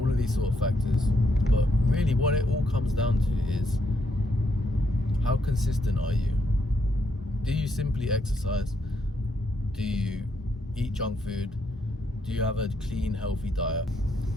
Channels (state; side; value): normal; both; correlation 0.76